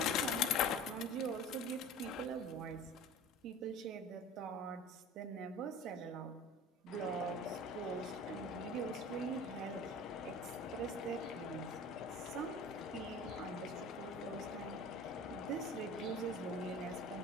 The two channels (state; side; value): normal; both; correlation 0.40